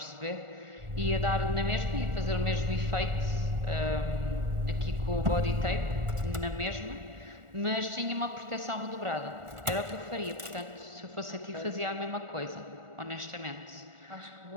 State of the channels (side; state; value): left; late; 1.4 ms